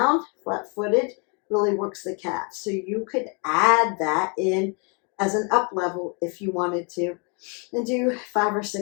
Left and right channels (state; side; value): quieter; right; 35.2 dB